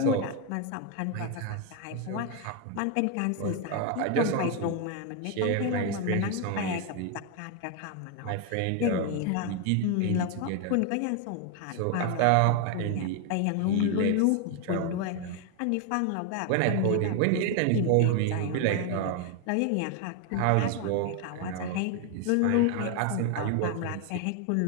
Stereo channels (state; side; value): different; both; correlation 0.01